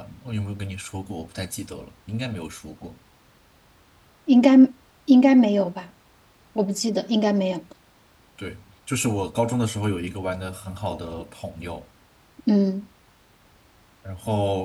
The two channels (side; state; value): both; identical; correlation 1.00